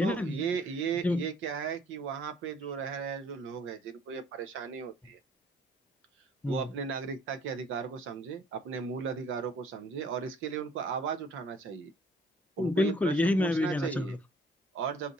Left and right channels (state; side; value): normal; both; correlation 0.57